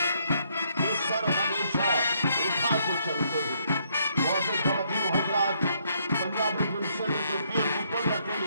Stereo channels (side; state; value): both; inverted; correlation -0.72